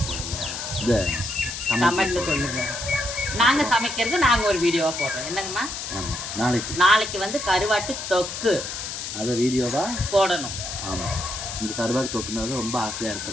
போடுங்க, இதை கமெண்ட்ல சொல்லுங்க. நாங்கள் சமைக்கிறது நாங்கள் ஒரு வீடியோவாக போடுறோம். என்னங்கம்மா? ஆமாம், நாளைக்கு வந்து கருவாட்டு தொக்கு அதை வீடியோவாக போடணும். ஆமாம், இந்த கருவாட்டு தொக்குனால ரொம்ப ஆசையாக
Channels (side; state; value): left; noise; hiss, 6 dB below the sound